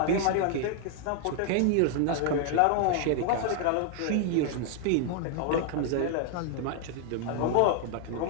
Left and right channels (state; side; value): different; both; correlation 0.00